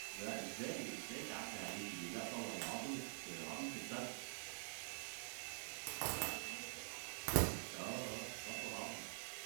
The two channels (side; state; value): left; silent; digital silence